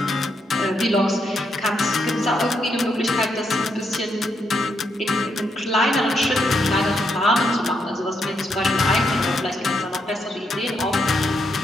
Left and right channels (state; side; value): normal; both; correlation 0.79